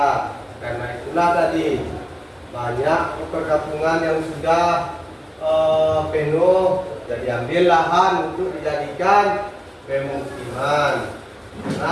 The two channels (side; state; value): both; identical; correlation 1.00